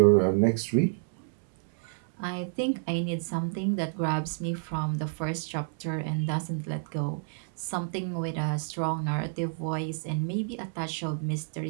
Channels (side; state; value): left; silent; 58 dB below the other